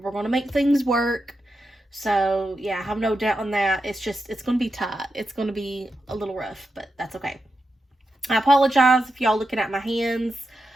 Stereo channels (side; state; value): both; normal; correlation 0.88